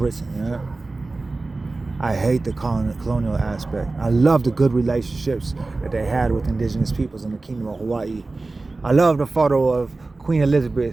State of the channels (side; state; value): left; quieter; 3.4 dB